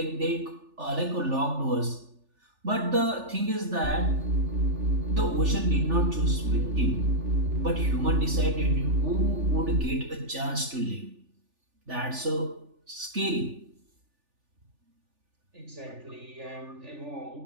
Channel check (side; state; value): left; late; 3.4 ms